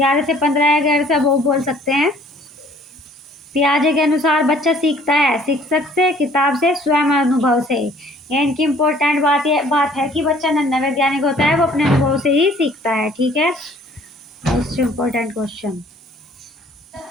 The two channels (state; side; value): normal; both; correlation 0.56